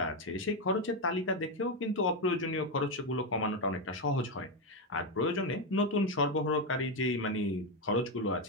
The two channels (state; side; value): normal; both; correlation 0.08